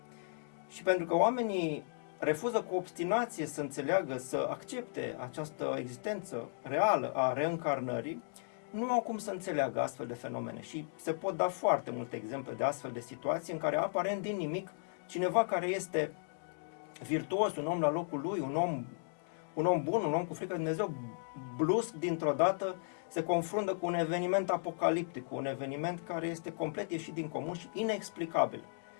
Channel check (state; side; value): silent; right; digital silence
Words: Și pentru că oamenii refuză cu obstinație să înțeleagă, să accepte această existență reală a reîncarnării, nu au cum să înțeleagă astfel de fenomene. Și se pot da foarte multe exemple de astfel de situații în care aparent din nimic cineva care este virtuos, un om la locul lui, un om bun, un om cu frică de Dumnezeu, brusc dintr-o dată se confruntă cu un eveniment apocaliptic, cu un eveniment care este complet ieșit din comun și inexplicabil.